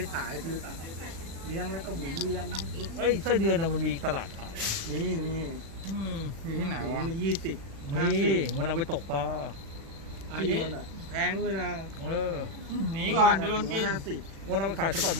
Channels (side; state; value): left; late; 36 ms